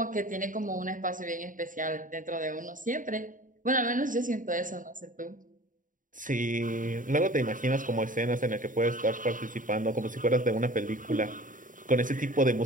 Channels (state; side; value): late; left; 0.39 ms